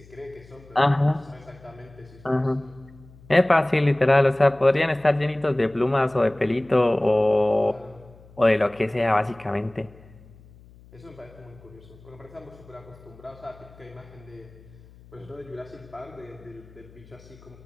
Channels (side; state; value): left; noise; hum, 23 dB below the sound